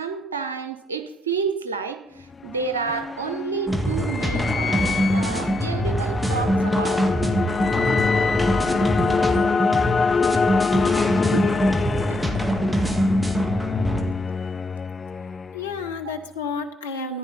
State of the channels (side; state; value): both; normal; correlation 0.78